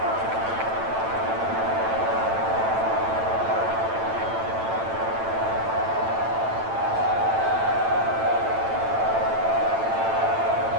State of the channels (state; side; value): late; left; 9.0 ms